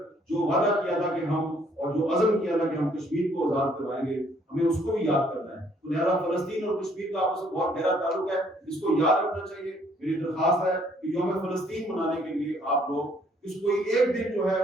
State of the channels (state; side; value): normal; both; correlation 0.64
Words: جو وعدہ کیا تھا کہ ہم، اور جو عزم کیا تھا کہ ہم کشمیر کو آزاد کروائیں گے، ہمیں اس کو بھی یاد کرنا ہے. تو لہٰذا فلسطین اور کشمیر کا آپس میں بہت گہرا تعلق ہے، اس کو یاد رکھنا چاہیے. میری درخواست ہے کہ یوم فلسطین منانے کے لیے آپ لوگ اس کوئی ایک دن جو ہے